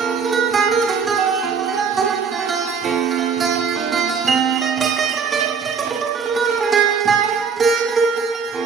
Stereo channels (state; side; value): quieter; left; 5.9 dB